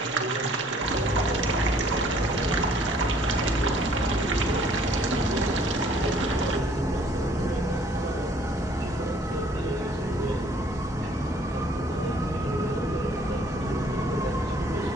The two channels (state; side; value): normal; both; correlation 0.59